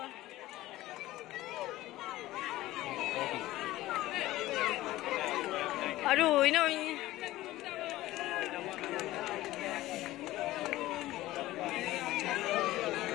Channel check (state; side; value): quieter; right; 16.5 dB